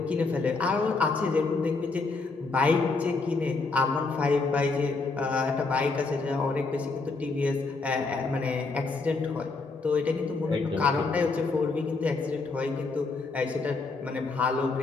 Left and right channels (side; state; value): right; quieter; 3.9 dB